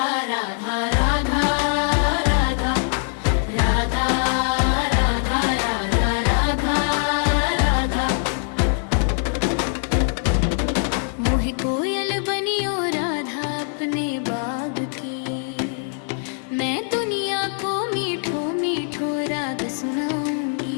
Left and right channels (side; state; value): right; silent; 56 dB below the other